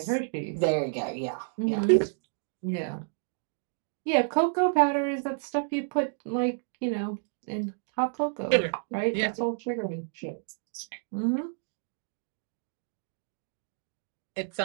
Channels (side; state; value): left; silent; digital silence